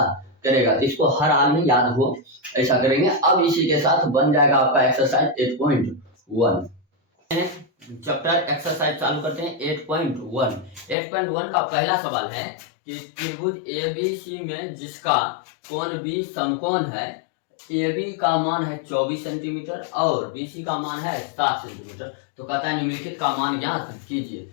करेगा, तो इसको हर हाल में याद हो, ऐसा करेंगे। अब इसी के साथ बन जाएगा आपका एक्सरसाइज 8.1। चैप्टर एक्सरसाइज चालू करते हैं 8.1। 8.1 का पहला सवाल है कि त्रिभुज ABC में जिसका कोण B समकोण है, AB का मान है 24 सेंटीमीटर और BC का मान है 7 सेंटीमीटर। तो कहता है निम्नलिखित का मान ज्ञात कीजिए।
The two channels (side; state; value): right; drops out; at 11.0 s